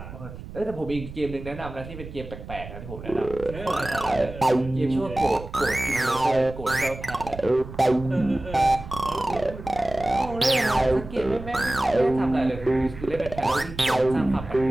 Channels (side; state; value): right; noise; rumble, 13 dB below the sound